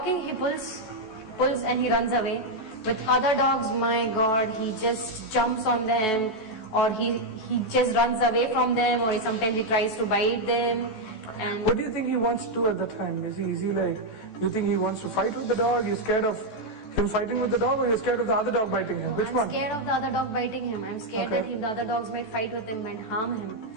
he pulls and he runs away. With other dogs, my God, he just jumps on them, or he just runs away from them, or sometimes he tries to bite them. And what do you think he wants to do at that time? Is he like, you think he wants to fight with the dog? You're scared of him fighting with the dog, or you're scared of the other dog biting him? Which one? I'm scared of the other dog biting him. I'm scared that the other dogs might fight with him and harm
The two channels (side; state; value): right; late; 14 ms